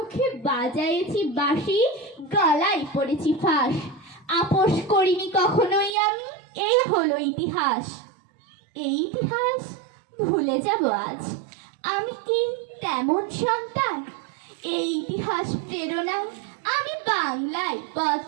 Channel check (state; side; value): drops out; left; at 6.0 s